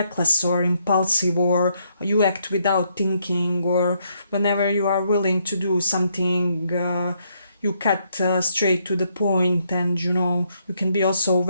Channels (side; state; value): both; inverted; correlation -0.74